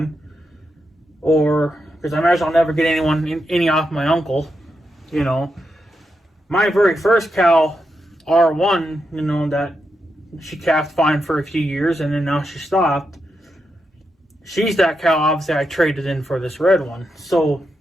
or because I imagine I'll never get any off my uncle. My very first cow, R1, that she calved fine for a few years and then now she stopped. She's that cow, obviously, I traded in for this red one. So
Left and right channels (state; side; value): normal; both; correlation 0.85